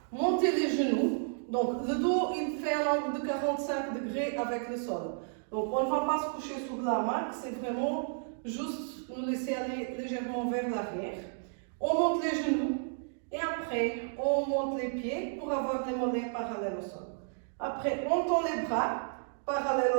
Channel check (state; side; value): silent; left; digital silence